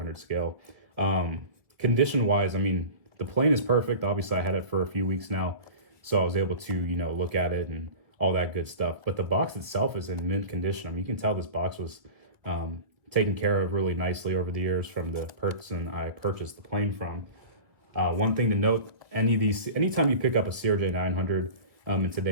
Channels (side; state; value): left; late; 1.7 ms